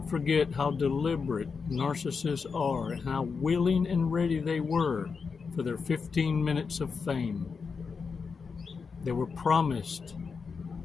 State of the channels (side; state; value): right; quieter; 5.3 dB